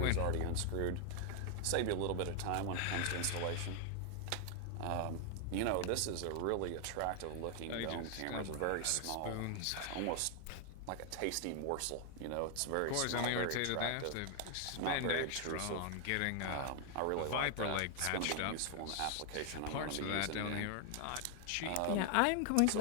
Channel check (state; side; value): different; both; correlation 0.00